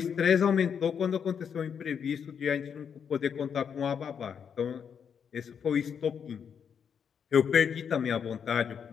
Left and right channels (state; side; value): quieter; right; 7.3 dB